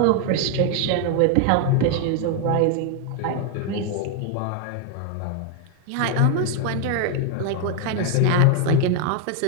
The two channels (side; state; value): both; different; correlation 0.00